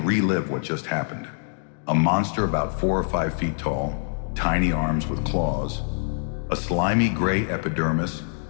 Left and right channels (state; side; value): silent; right; digital silence